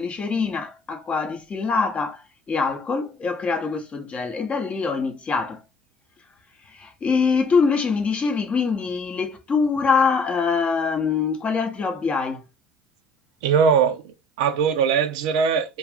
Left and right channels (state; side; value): normal; both; correlation 0.53